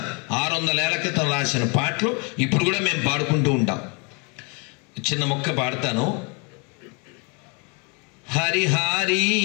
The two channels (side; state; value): right; quieter; 33.0 dB